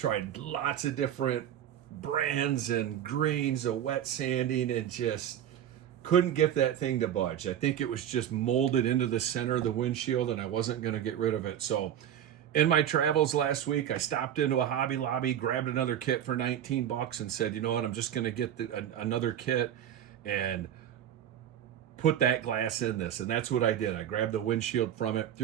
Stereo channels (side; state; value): left; quieter; 10.3 dB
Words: lots of different brands and grains of wet sanding and just couldn't get that thing to budge. I think it was just molded into the center of the windshield and I wasn't going to get rid of it. So in my travels last week, I stopped into a Hobby Lobby, grabbed another kit for 19 bucks and said, you know what, I'm just going to get another kit and put that glass in this. And that's what I did. I grabbed the windshield from it,